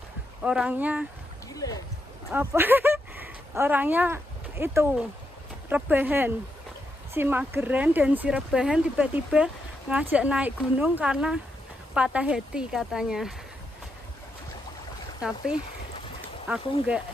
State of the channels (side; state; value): both; normal; correlation 0.82